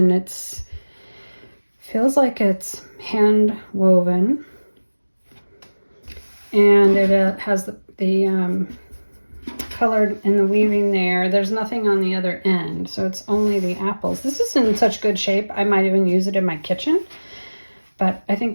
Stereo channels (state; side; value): inverted; both; correlation -1.00